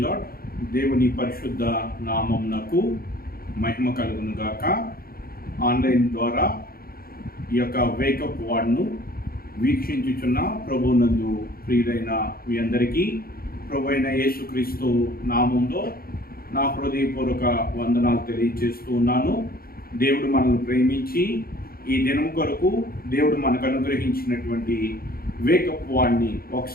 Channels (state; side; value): late; right; 0.43 ms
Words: lord. దేవుని పరిశుద్ధ నామమునకు మహిమ కలుగును గాక. ఆన్లైన్ ద్వారా ఈ యొక్క వేకప్ వార్డ్ను వీక్షించుచున్న ప్రభునందు ప్రియులైన మీ అందరికీ ప్రభు అయిన యేసుక్రీస్తు నామంలో నా హృదయపూర్వక వందనాలు తెలియజేస్తూ ఉన్నాను. దేవుడు మనల్ని ప్రేమించి ఈ దినం కొరకు దేవుడు మనకు అనుగ్రహించినటువంటి వేకప్ వార్డ్ని